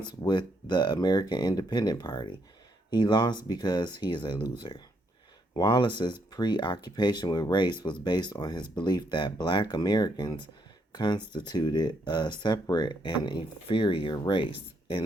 with the American Independent Party. He lost because he is a loser. Wallace's preoccupation with race was based on his belief that black Americans constituted a separate and inferior race.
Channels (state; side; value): normal; both; correlation 0.75